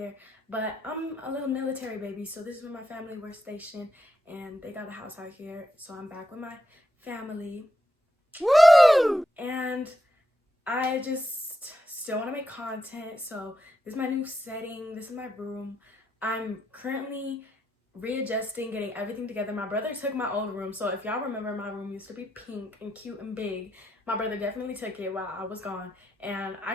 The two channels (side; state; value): both; normal; correlation 0.83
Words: But I'm a little military baby, so this is where my family were stationed, and they got a house out here, so I'm back with my family. Woo! And I just still want to make content, so this is my new setting. This is my room. I'm currently readjusting, getting everything together. My brother took my old room, so if y'all remember, my room used to be pink and cute and big. My brother definitely took it while I was gone, and I